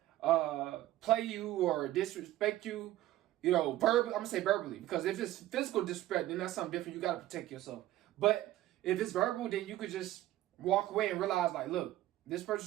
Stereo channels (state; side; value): quieter; left; 14.8 dB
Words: saying, play you or disrespect you, verbally, I'm going to say verbally, because if it's physical disrespect, then that's something different. You got to protect yourself. But if it's verbal, then you could just walk away and realize, like, look, this